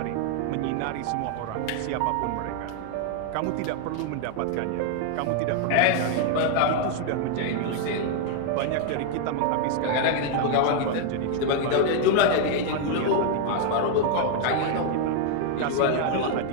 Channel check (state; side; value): different; both; correlation 0.00